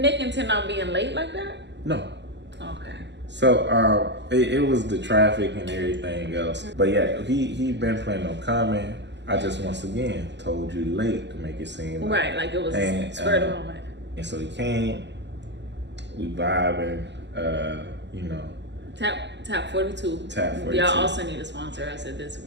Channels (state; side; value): late; left; 0.51 ms